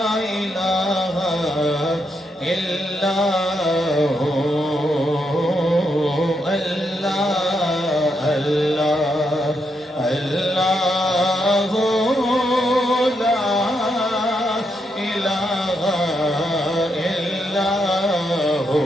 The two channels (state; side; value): normal; both; correlation 0.80